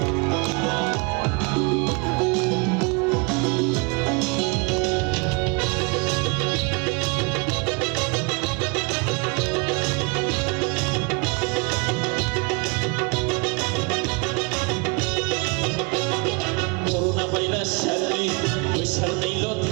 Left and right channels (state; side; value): quieter; left; 30.0 dB